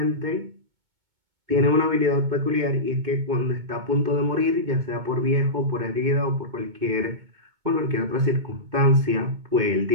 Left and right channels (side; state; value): left; late; 2.2 ms